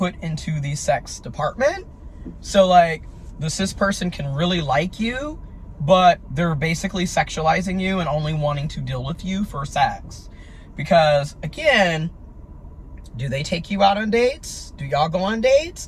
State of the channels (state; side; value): identical; both; correlation 1.00